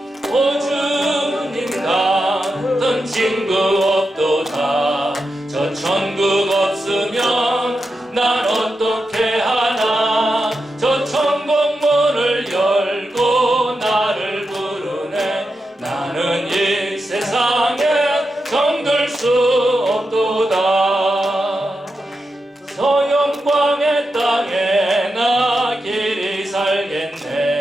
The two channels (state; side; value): normal; both; correlation 0.88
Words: 친구 없도다. 저 천국 없으면 난 어떻게 하나. 저 천국 문을 열고 나를 부르네. 나는 이 세상에 정들 수 없도다. 저 영광의 땅에 나 길이